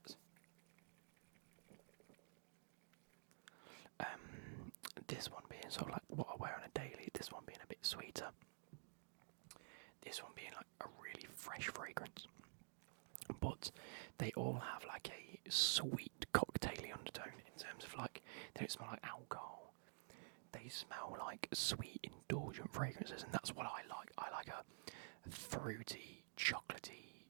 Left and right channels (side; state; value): left; silent; digital silence